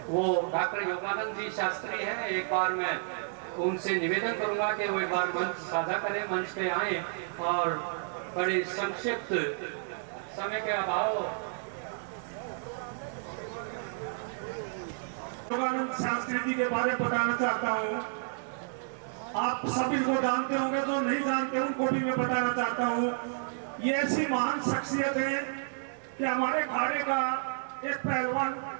वो डॉक्टर योगानंद जी शास्त्री हैं। एक बार मैं उनसे निवेदन करूंगा कि वो एक बार मंच साझा करें, मंच पे आए और बड़े संक्षिप्त समय के अभाव। योगानंद शास्त्री जी के बारे में बताना चाहता हूँ। आप सभी को जानते होंगे, तो नहीं जानते उनको भी मैं बताना चाहता हूँ। ये ऐसी महान शख्सियत है कि हमारे अखाड़े का एक पहलवान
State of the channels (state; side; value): silent; left; 57 dB below the other